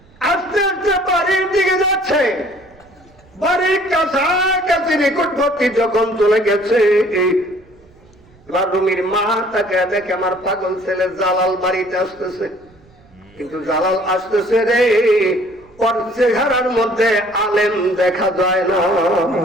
আস্তে আস্তে বাড়ির দিকে যাচ্ছে। বাড়ির কাছাকাছি নিকটবর্তী যখন চলে গেছে, এবার রুমির মা তাকে দেখে, আমার পাগল ছেলে জালাল বাড়িতে আসতেছে। কিন্তু জালাল আসতেছে রে, ওর চেহারার মধ্যে আলেম দেখা যায় না।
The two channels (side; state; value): right; noise; rumble, 29 dB below the sound